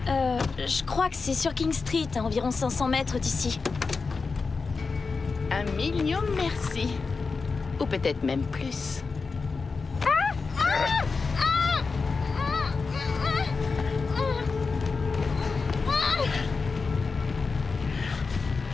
Je crois que c'est sur King Street, à environ 500 mètres d'ici. 1 million merci. Ou peut-être même plus.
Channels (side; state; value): right; quieter; 4.5 dB